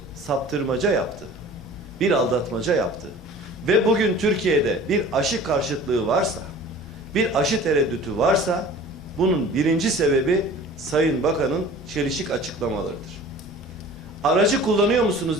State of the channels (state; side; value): normal; both; correlation 0.44